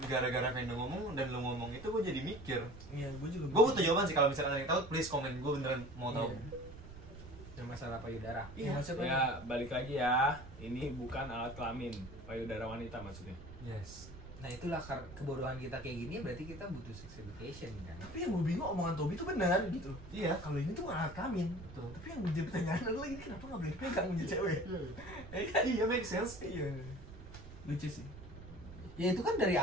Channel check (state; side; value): noise; right; rumble, 15 dB below the sound